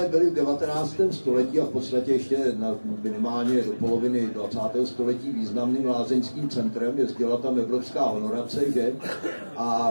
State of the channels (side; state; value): both; inverted; correlation -1.00